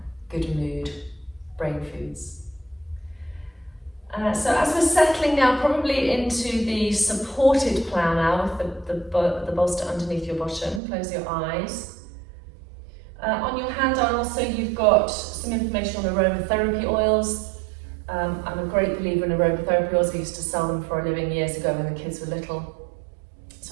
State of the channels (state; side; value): drops out; left; at 10.8 s